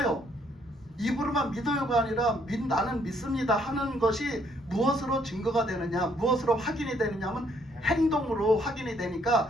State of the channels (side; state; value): both; normal; correlation 0.68